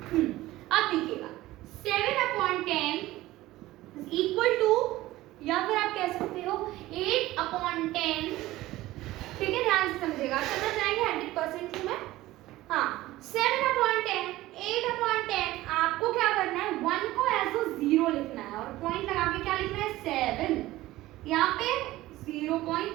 अब देखिएगा 7/10 इज इक्वल टू, या फिर आप कह सकते हो 8/10। ठीक है, ध्यान से समझिएगा, समझ जाएंगे 100% में। हाँ, 7/10, 8/10 आपको क्या करना है? 1 को एज अ 0 लिखना है और पॉइंट लगा के क्या लिखना है? 7। यहाँ पे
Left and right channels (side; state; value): left; quieter; 16.9 dB